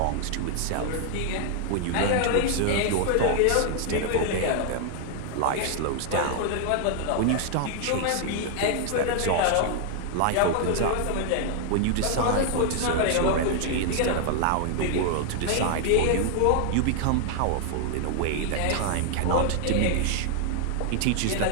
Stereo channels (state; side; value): different; both; correlation 0.00